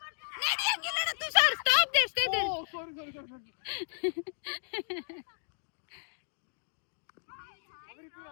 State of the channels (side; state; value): right; silent; digital silence